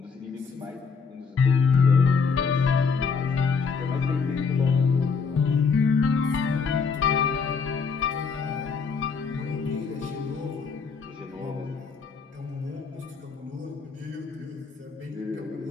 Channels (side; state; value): right; quieter; 5.4 dB